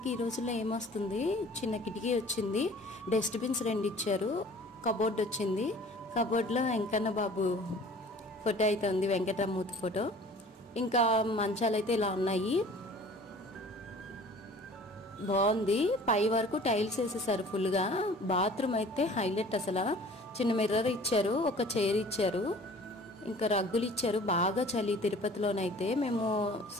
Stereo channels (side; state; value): both; normal; correlation 0.48